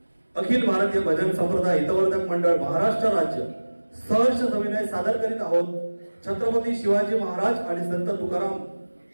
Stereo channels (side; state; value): both; inverted; correlation -1.00